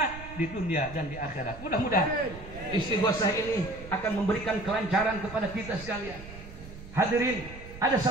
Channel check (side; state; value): right; noise; rumble, 14 dB below the sound